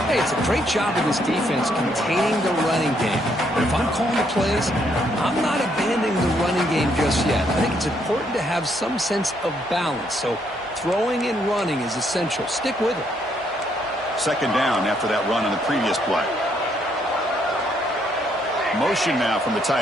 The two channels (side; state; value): both; normal; correlation 0.72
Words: Hey, it's a great job of this defense containing the running game. But if I'm calling the plays, I'm not abandoning the running game just yet. I think it's important to have some sense of balance. So throwing and running is essential. Stick with it. Second down after that run on the previous play. Motion now from the